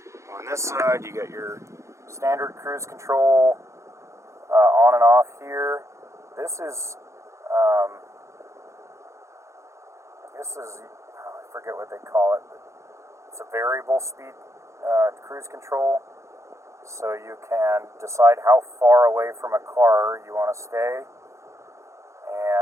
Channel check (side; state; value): left; late; 0.14 ms